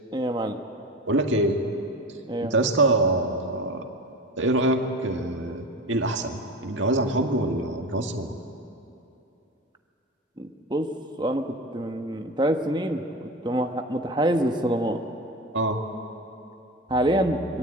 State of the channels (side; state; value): both; normal; correlation 0.29